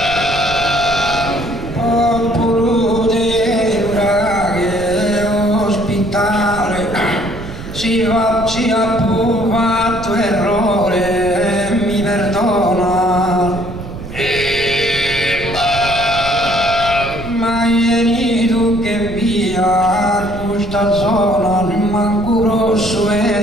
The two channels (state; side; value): noise; right; rumble, 11 dB below the sound